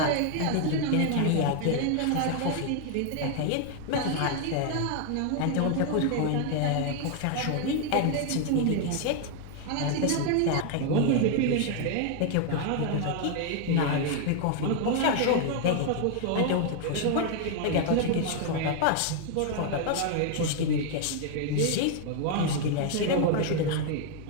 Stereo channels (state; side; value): different; both; correlation 0.00